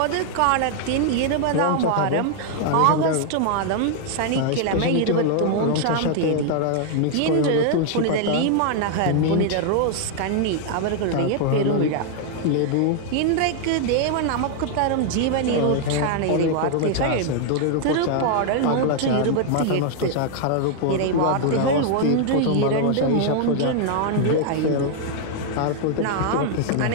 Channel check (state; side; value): different; both; correlation 0.00